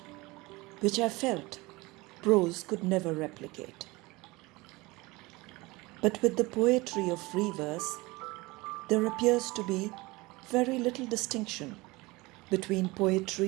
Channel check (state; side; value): quieter; left; 22.4 dB